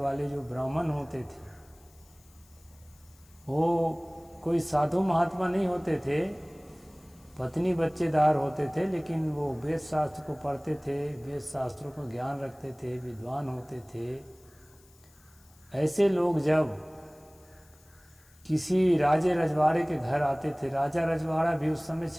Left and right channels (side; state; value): left; noise; hiss, 28 dB below the sound